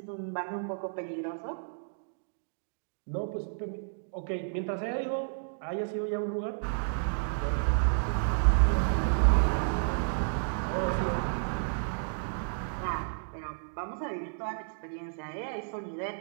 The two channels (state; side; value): silent; left; digital silence